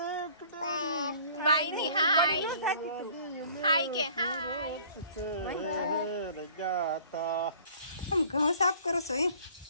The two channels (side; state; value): both; inverted; correlation -0.51